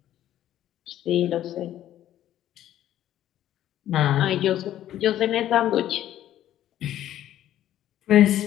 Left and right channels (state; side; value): quieter; right; 12.3 dB